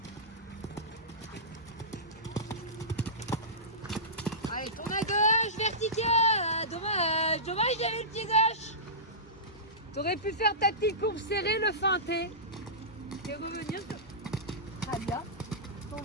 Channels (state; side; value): normal; both; correlation -0.19